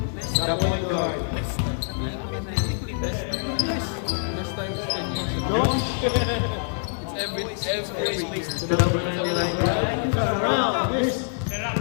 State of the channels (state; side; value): silent; right; digital silence